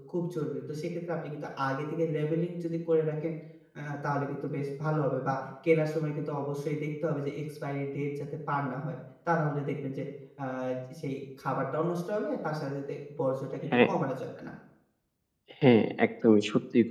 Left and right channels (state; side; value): identical; both; correlation 1.00